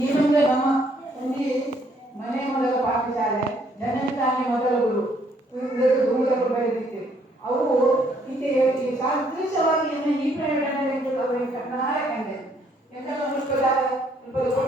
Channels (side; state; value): both; normal; correlation 0.67